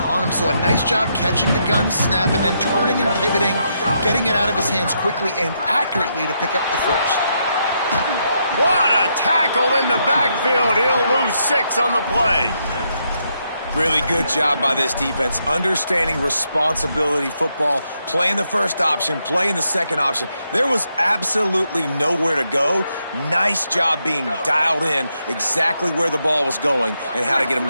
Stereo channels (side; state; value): both; inverted; correlation -0.79